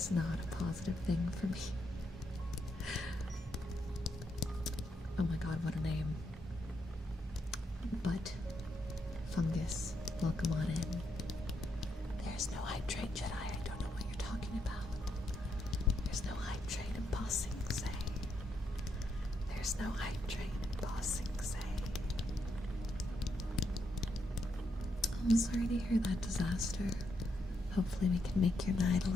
not a positive thing for me. Oh my god, what a name. But fungus, welcome on in. There's no hydrate, Jedi. I don't know what you're talking about. There's no hydrate in Bossing Say. There's no hydrate in Bossing Say. I'm sorry to hear that disaster. Hopefully we can make your night a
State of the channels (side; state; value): both; normal; correlation 0.79